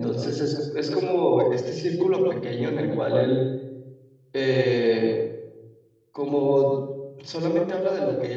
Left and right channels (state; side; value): identical; both; correlation 1.00